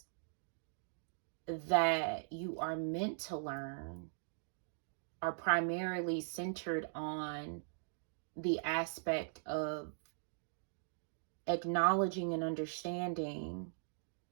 that you are meant to learn are primarily centered on the aspect of acknowledging and understanding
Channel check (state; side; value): silent; left; digital silence